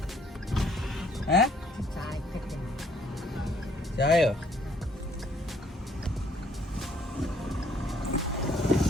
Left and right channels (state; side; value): normal; both; correlation 0.64